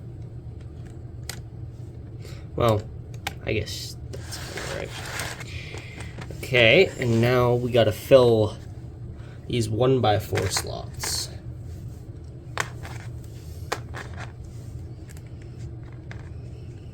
Well, I guess that's all right. Okay, and now we gotta fill these 1x4 slots.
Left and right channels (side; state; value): both; identical; correlation 1.00